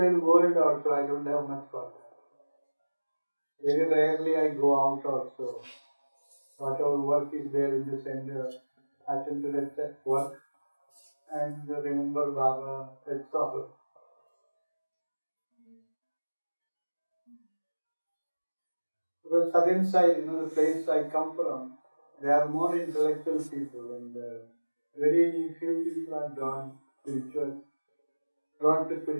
world also. I don't have much contact. Very rarely I go out also. Whatever work is there in the center, attend to that work and remember Baba, that's all. Because southern side, the place I come from, there are more intellectual people and very few people are drawn to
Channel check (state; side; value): inverted; both; correlation -1.00